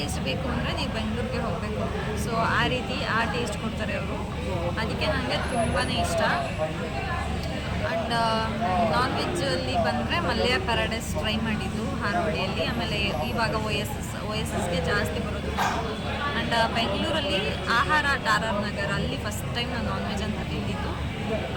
ಬೇಕು ಅಂದರೆ ನೀವು ಬೆಂಗಳೂರಿಗೆ ಹೋಗಬೇಕು. ಸೊ ಆ ರೀತಿ ಆ ಟೇಸ್ಟ್ ಕೊಡ್ತಾರೆ ಅವರು. ಅದಕ್ಕೆ ನನಗೆ ತುಂಬಾ ಇಷ್ಟ. ಆ್ಯಂಡ್ ನಾನ್ ವೆಜ್ಜಲ್ಲಿ ಬಂದರೆ ಮಲ್ಯ ಪ್ಯಾರಡೈಸ್ ಟ್ರೈ ಮಾಡಿದ್ದು ಹಾರೋಳಿಯಲ್ಲಿ. ಆಮೇಲೆ ಇವಾಗ OSSಗೆ ಜಾಸ್ತಿ ಬರೋದು. ಆ್ಯಂಡ್ ಬೆಂಗಳೂರಲ್ಲಿ ಆಹಾರ RR ನಗರ್, ಅಲ್ಲಿ ಫಸ್ಟ್ ಟೈಮ್ ನಾನು ನಾನ್ ವೆಜ್ ಅಂತ ತಿಂದಿದ್ದು.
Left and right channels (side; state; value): both; identical; correlation 1.00